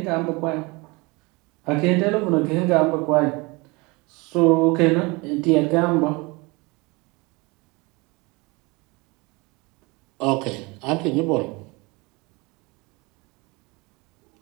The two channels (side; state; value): left; quieter; 25.8 dB